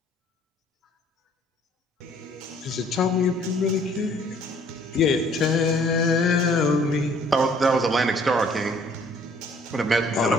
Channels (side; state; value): both; normal; correlation 0.58